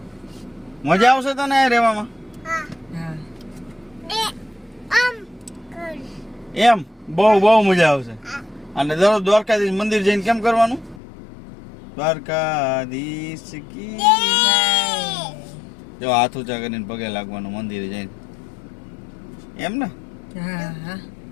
મજા આવશે તને રહેવામાં? એમ બહુ મજા આવશે. અને દરરોજ દ્વારકાધીશ મંદિર જઈને કેમ કરવાનું? દ્વારકાધીશ કી જો હાથ ઊંચા કરીને પગે લાગવાનું મંદિરે જઈને, એમ ને?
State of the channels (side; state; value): right; drops out; at 11.0 s